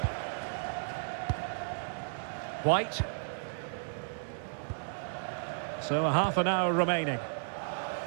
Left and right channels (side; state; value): left; silent; digital silence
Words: White. So a half an hour remaining.